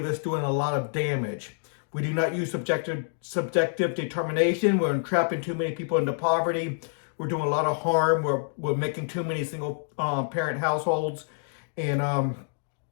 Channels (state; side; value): silent; right; digital silence